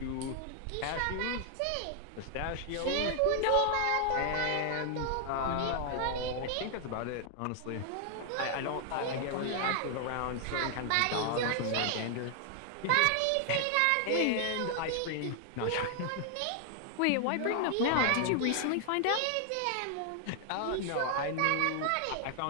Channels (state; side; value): different; both; correlation 0.00